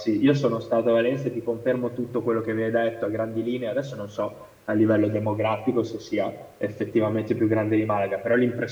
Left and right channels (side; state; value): both; identical; correlation 1.00